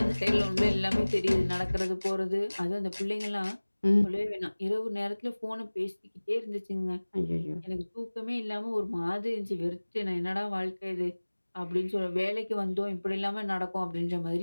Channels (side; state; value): both; inverted; correlation -1.00